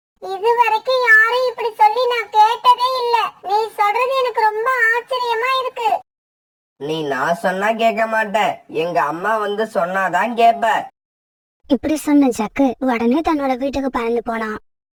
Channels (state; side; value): identical; both; correlation 1.00